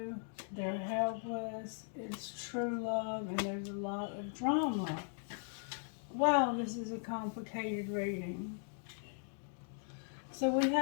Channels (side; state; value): right; silent; 52 dB below the other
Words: They're helpless. It's true love, and there's a lot of drama. Wow, this is a complicated reading. So we